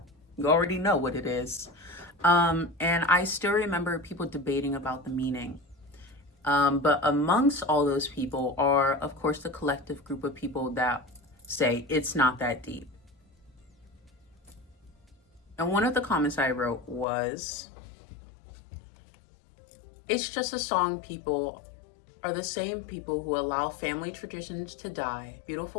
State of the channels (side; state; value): right; drops out; at 17.1 s